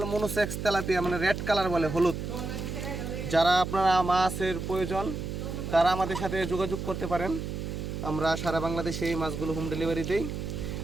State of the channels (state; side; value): noise; right; hum, 5 dB below the sound